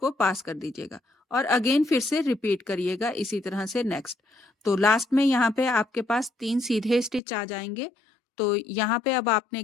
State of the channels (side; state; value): right; drops out; at 7.2 s